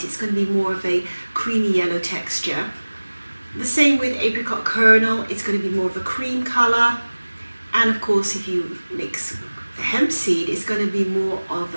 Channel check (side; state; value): both; inverted; correlation -1.00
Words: it's going to be more of a creamy yellow texture. The same with apricot kernel, it's going to be more of a cream colour. And of course, if you mix hemp seed, it's going to be more of